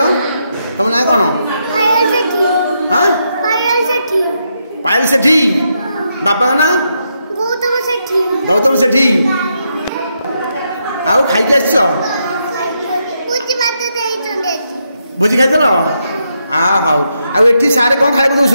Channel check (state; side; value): inverted; both; correlation -0.81